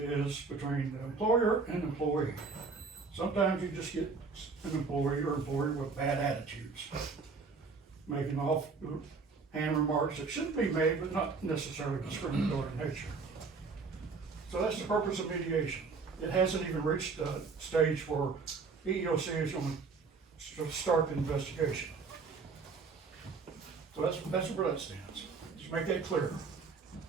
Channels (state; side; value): quieter; left; 4.6 dB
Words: between the employer and employee. Sometimes you just get an employee or employer with bad attitudes, making offhand remarks that shouldn't be made, but not necessarily discriminatory in nature. So that's the purpose of mediation. It hasn't even reached the stage where EEOC is gonna start the investigation. So that's where that stands. Just make that clear.